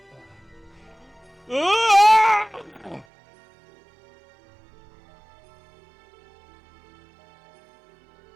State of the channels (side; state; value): left; drops out; at 3.1 s